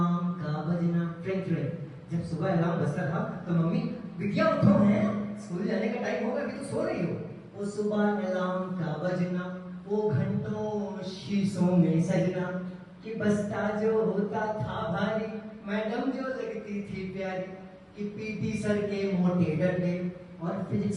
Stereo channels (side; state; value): both; identical; correlation 1.00